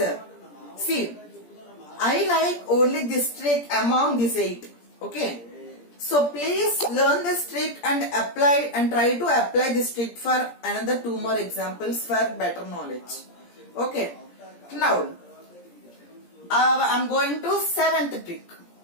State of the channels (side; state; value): right; late; 17 ms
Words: See, I like only this trick among these 8. Okay. So please learn this trick and apply and try to apply this trick for another 2 more examples for better knowledge. Okay. Now I'm going to 7th trick.